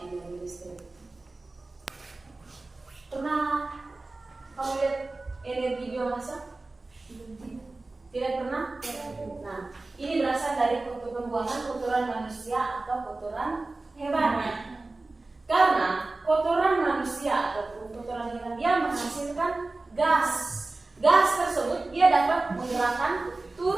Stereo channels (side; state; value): left; quieter; 3.2 dB